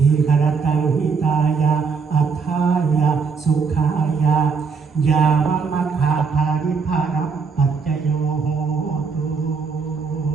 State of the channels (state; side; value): quieter; left; 5.3 dB